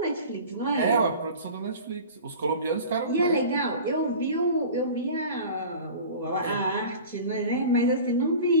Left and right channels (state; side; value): inverted; both; correlation -0.38